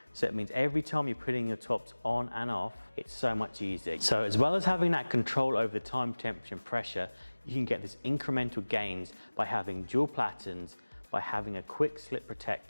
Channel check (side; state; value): both; inverted; correlation -1.00